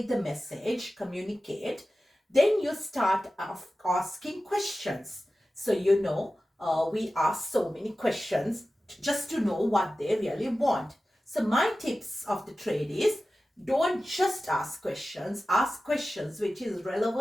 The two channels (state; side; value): normal; both; correlation 0.95